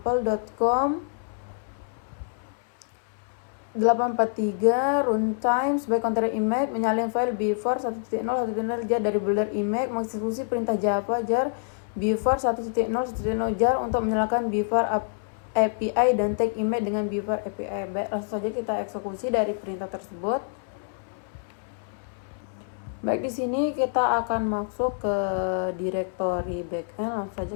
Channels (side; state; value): right; silent; 60 dB below the other